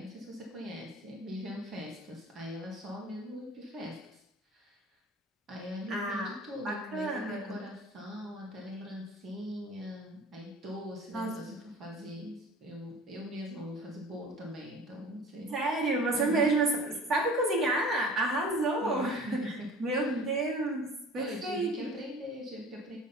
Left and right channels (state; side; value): normal; both; correlation 0.43